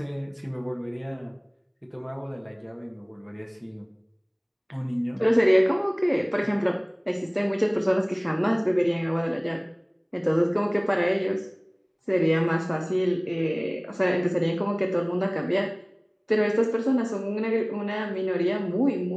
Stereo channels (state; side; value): identical; both; correlation 1.00